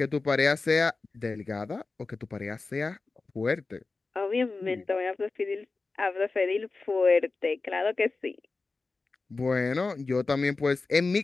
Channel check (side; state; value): right; quieter; 3.8 dB